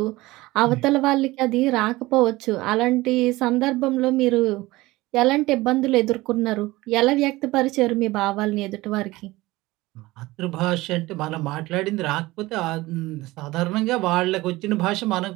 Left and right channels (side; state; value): left; quieter; 19.5 dB